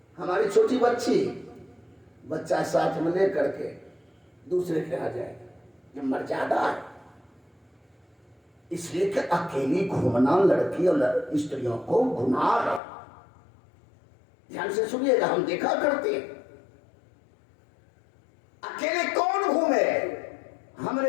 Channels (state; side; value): drops out; right; at 12.8 s